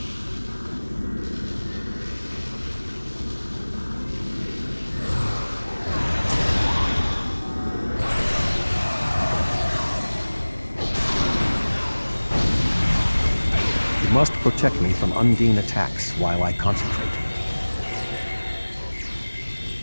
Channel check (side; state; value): both; inverted; correlation -1.00